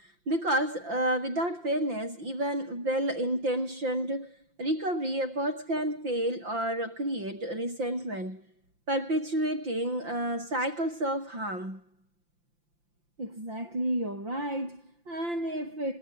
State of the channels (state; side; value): late; left; 5.8 ms